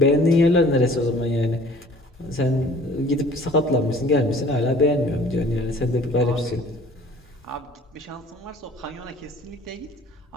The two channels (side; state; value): both; normal; correlation 0.51